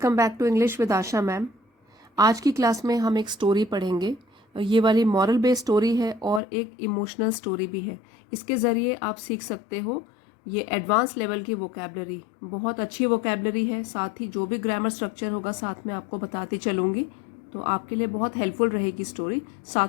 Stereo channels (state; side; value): drops out; right; at 6.4 s